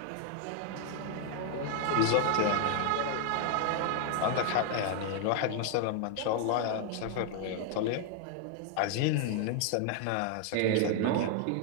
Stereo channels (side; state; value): both; different; correlation 0.00